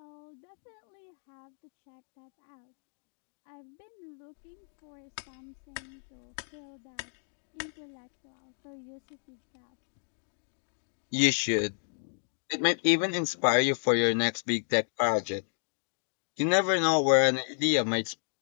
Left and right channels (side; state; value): right; silent; digital silence